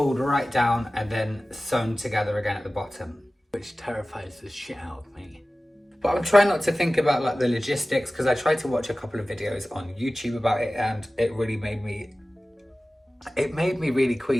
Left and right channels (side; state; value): both; normal; correlation 0.97